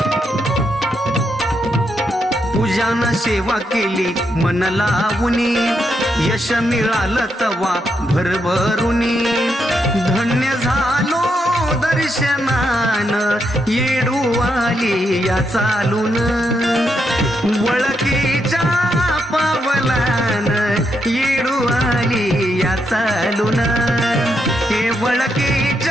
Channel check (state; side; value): normal; both; correlation 0.80